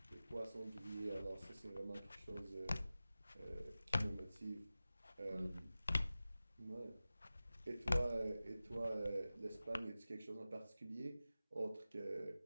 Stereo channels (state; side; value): inverted; both; correlation -0.95